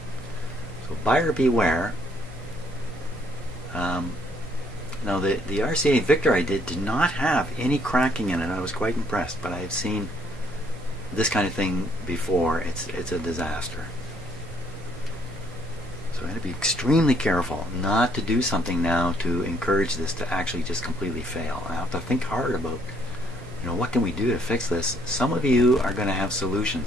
So buyer beware. Now the RCA Victor I did not have any cracking in it. I was quite impressed, but I have seen this kind of thing before. It's a disaster. So I had to be extremely careful not to do something now to encourage this to actually just completely fail. I have to think hard about, you know, what can we do to fix this? Some of you are going to have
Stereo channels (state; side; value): normal; both; correlation 0.67